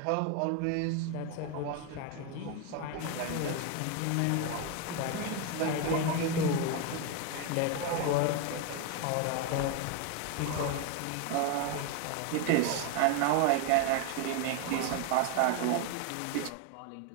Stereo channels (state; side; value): different; both; correlation 0.02